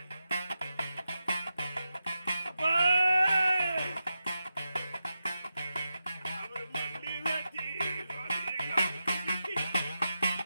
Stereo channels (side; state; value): both; inverted; correlation -0.89